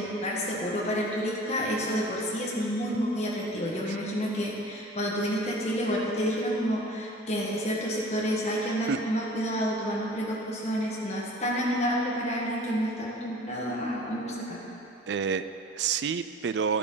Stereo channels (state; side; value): normal; both; correlation 0.44